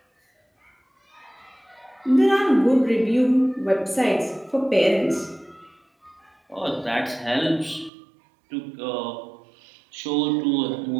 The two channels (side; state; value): left; drops out; at 7.9 s